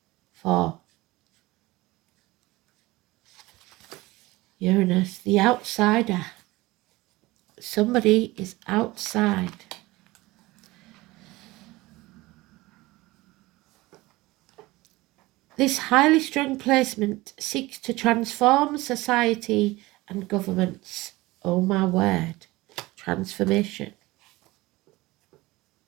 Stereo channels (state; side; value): quieter; left; 20.2 dB